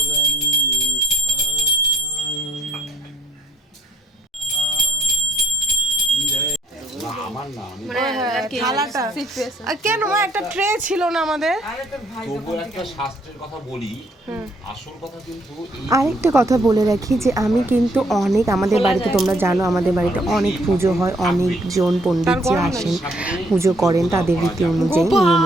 আমার না, থালার একটা আর কেন মা একটা ট্রে ছিল না আমাদের? আরে তোর ভাই তবুও একটা শাস্ত্রের কথা বলি, আসল কথা কিন্তু এই আরেকটা কথা বলে রাখি যে আমি কিন্তু অনেক আমাদের বাড়িতে তোমরা জানো আমাদের বাড়িতে অনেক পুজো হয়, অনেকজন পণ্ডিতজি আসেন পুজো করেন তাদের রীতি অনুযায়ী নিয়ম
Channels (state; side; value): normal; both; correlation 0.65